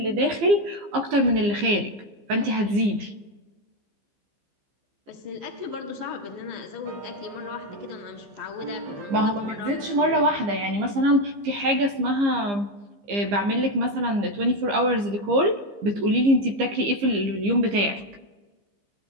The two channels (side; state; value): left; late; 15 ms